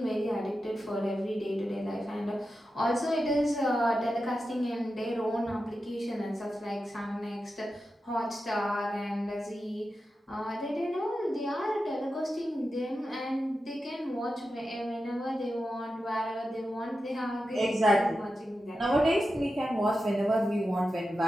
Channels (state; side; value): normal; both; correlation 0.91